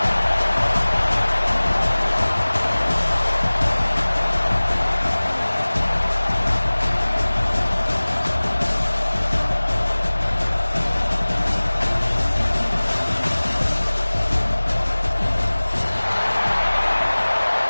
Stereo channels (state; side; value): inverted; both; correlation -1.00